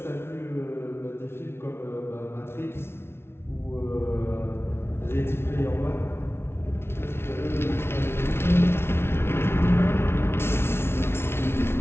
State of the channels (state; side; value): late; right; 0.12 ms